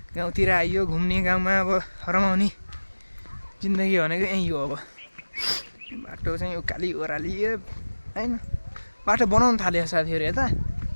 गाउँतिर आइयो घुम्ने गाउँमा अब रमाउने जिन्दगी भनेको यहीँ हो अब बाटो चाहिँ उकाली ओह्राली होइन बाटो बनाउनु थाल्यो साथीहरू यता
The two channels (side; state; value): both; inverted; correlation -1.00